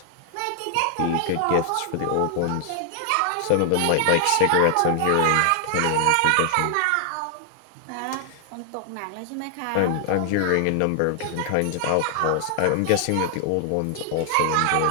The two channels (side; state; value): both; different; correlation 0.00